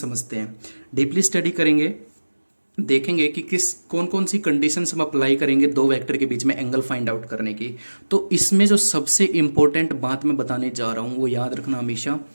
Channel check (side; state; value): both; inverted; correlation -1.00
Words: हैं, डीपली स्टडी करेंगे। देखेंगे कि किस कौन कौन सी कंडीशंस हम अप्लाई करेंगे दो वेक्टर के बीच में एंगल फाइंड आउट करने की। तो इसमें जो सबसे इंपॉर्टेंट बात मैं बताने जा रहा हूँ वो याद रखना हमेशा